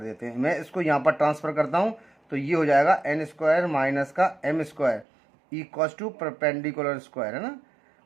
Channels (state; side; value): drops out; left; at 5.1 s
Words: देते हैं। मैं इसको यहाँ पर ट्रांसफ़र करता हूँ, तो ये हो जाएगा n स्क्वायर माइनस का m square equals to perpendicular square, है ना।